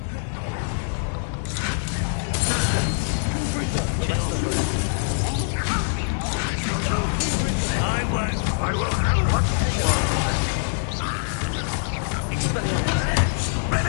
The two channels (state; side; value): silent; right; digital silence